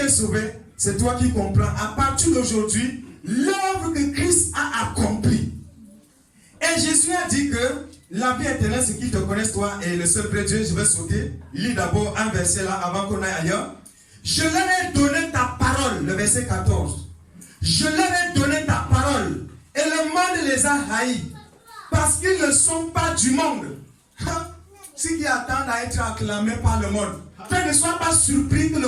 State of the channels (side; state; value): both; identical; correlation 1.00